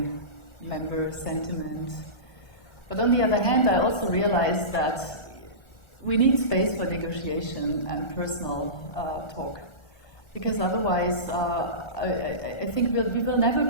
member sentiment. But on the other hand, I also realize that we need space for negotiation and personal talk. Because otherwise, I think we will never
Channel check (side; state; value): right; late; 1.3 ms